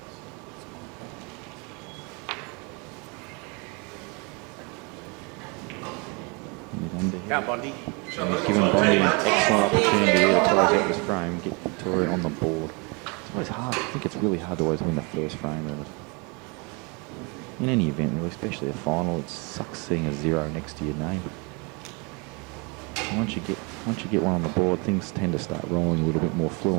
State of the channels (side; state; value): left; quieter; 31.0 dB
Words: Bondi. And he's given Bondi an excellent opportunity here to close out this frame, get Victoria on the board. It's always hard. I think it's really hard to always win the first frame of it. In any event, really, especially a final, it sucks seeing a 0 next to your name. And once you get one on the board, things tend to start rolling a little bit more